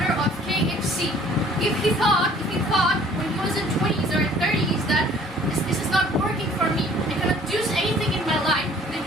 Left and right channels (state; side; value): normal; both; correlation 0.55